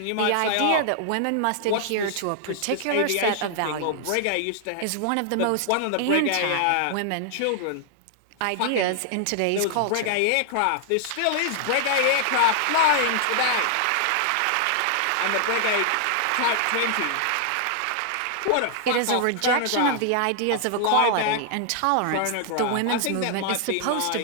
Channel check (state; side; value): different; both; correlation -0.01